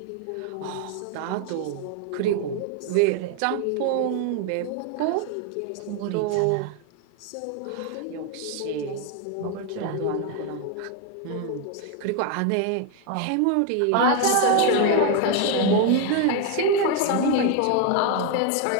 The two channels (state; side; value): different; both; correlation 0.01